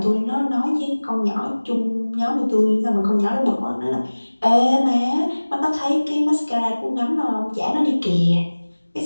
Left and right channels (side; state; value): both; inverted; correlation -1.00